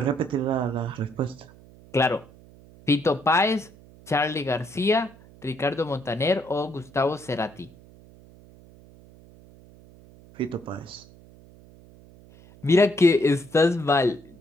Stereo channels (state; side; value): noise; right; hum, 23 dB below the sound